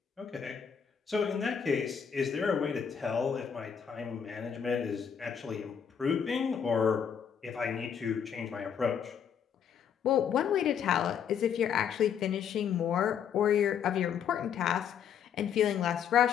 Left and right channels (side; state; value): right; quieter; 7.8 dB